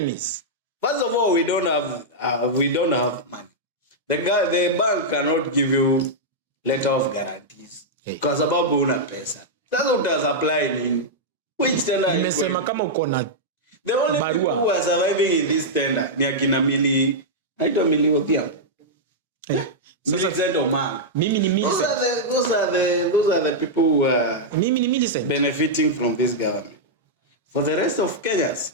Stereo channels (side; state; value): both; normal; correlation -0.07